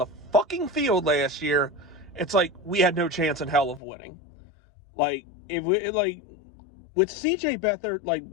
fucking field last year. It's like we had no chance in hell of winning. Like, with CJ Beathard, like,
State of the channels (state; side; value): drops out; right; at 3.8 s